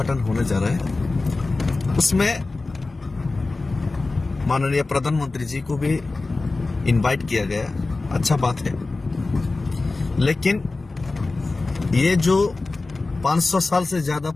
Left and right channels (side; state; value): right; quieter; 3.4 dB